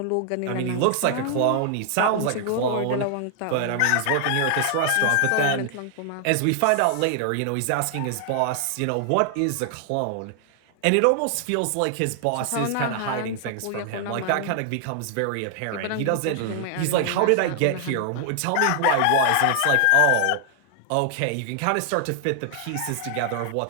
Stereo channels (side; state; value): both; different; correlation 0.00